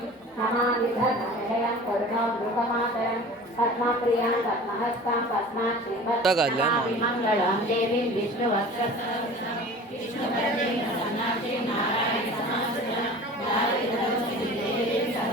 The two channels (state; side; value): normal; both; correlation 0.40